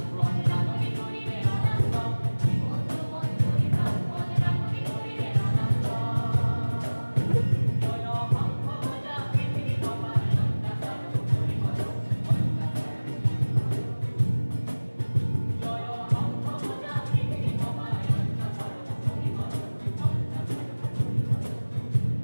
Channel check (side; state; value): both; inverted; correlation -1.00